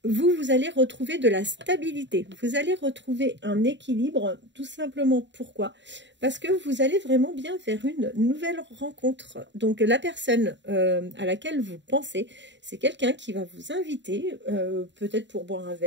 vous allez retrouver de la stabilité. Vous allez retrouver un équilibre, tout simplement. Pourquoi? Parce que vous allez vraiment bien vers une nouvelle rencontre. Donc, la personne à laquelle vous pensez, c'est quelqu'un qui va vous inviter, peut-être pour boire un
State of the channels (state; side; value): late; left; 0.52 ms